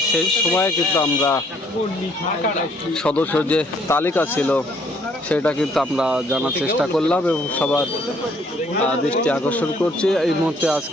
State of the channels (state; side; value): normal; both; correlation 0.64